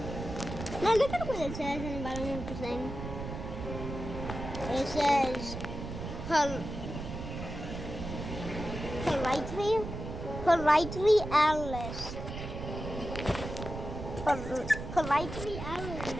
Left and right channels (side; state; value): right; noise; rumble, 7 dB below the sound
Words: Now look at what it says in the bottom of the thing. It says politely Alice. Politely